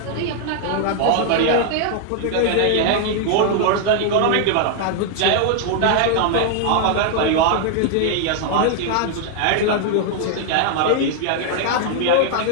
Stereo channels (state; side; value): different; both; correlation 0.00